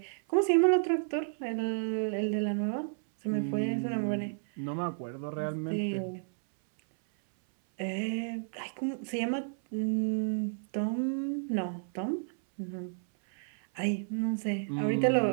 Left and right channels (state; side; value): silent; left; 57 dB below the other